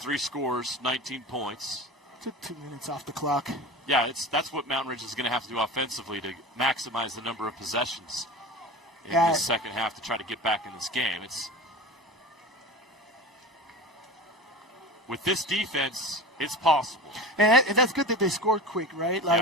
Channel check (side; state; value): both; normal; correlation 0.32